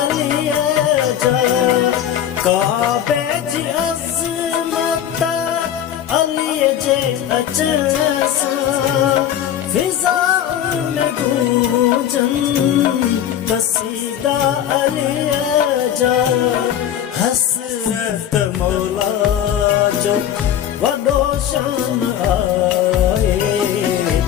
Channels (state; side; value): quieter; right; 10.3 dB